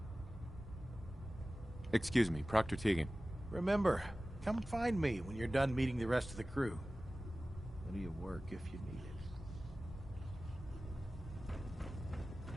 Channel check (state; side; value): normal; both; correlation 0.96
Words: Excuse me, Proctor Tegan. Remember, come find me when you're done meeting the rest of the crew. Plenty of work if you need it.